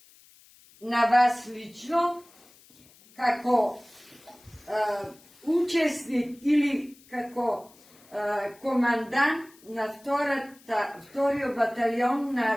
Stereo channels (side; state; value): left; noise; hiss, 27 dB below the sound